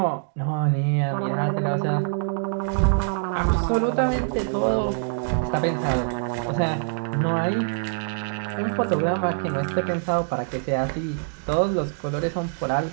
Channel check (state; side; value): silent; left; digital silence